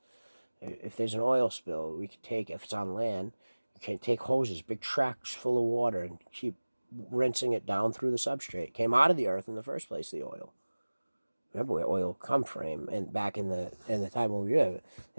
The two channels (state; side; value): inverted; both; correlation -1.00